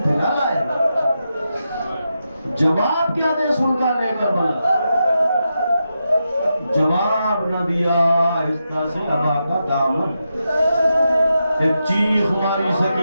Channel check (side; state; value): both; inverted; correlation -0.87